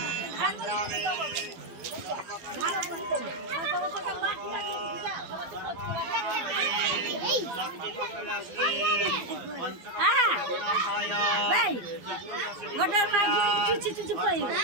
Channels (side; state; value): left; late; 12 ms